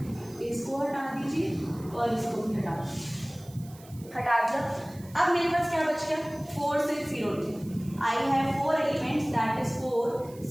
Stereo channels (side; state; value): right; noise; hiss, 23 dB below the sound